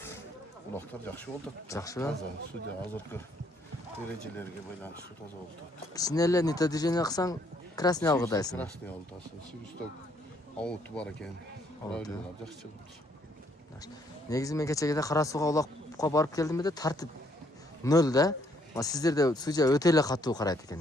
Улактар жакшы болуп атат. Жакшыбы? Судья азыркы эрежелерге байланыштуу таза болуп атат. Кичине эле нито движение кылсаң красный алгыдайсың. Красный алгыдайсың. Сибисток ауту бар экен. Правилалар жакшы чыгып. Негизи мен кечеге Кара сууга улакка барып келдим эле, тартип нөл да. Сиздерде судья өтө эле катуу карайт экен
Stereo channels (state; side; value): normal; both; correlation 0.68